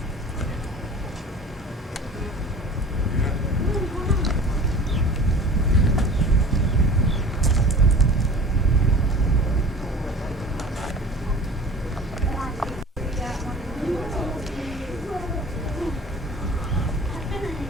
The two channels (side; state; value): both; normal; correlation 0.42